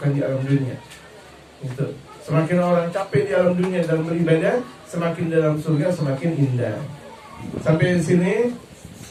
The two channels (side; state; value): both; identical; correlation 1.00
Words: di alam dunia. Itu. Semakin orang capek di alam dunia dalam beribadah, semakin dalam surga semakin indah. Sampai di sini.